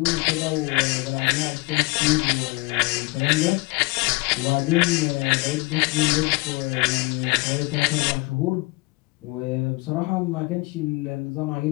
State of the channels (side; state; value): right; quieter; 25.4 dB